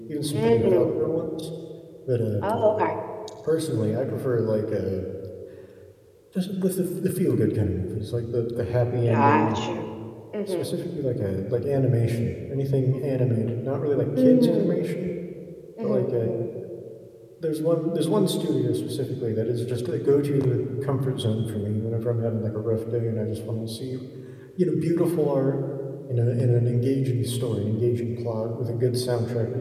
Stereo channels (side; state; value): both; identical; correlation 1.00